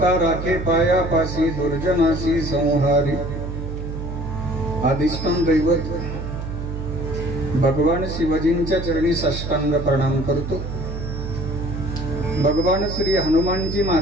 राखे पायापासी दुर्जनासी संहारी अधिष्ठान दैवत भगवान शिवजींच्या चरणी साष्टांग प्रणाम करतो। भगवान श्री हनुमानजी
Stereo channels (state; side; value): noise; right; hum, 6 dB below the sound